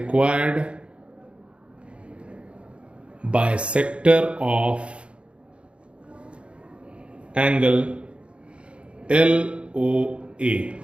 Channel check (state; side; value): late; left; 0.058 ms